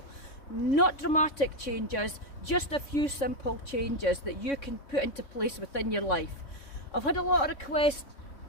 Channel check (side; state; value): right; late; 3.6 ms